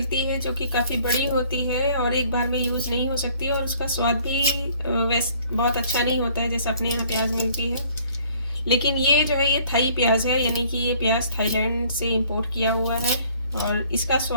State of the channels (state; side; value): inverted; both; correlation -0.57